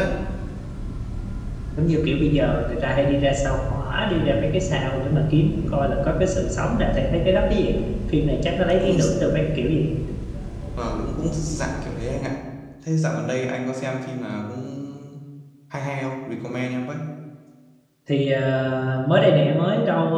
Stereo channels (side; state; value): both; identical; correlation 1.00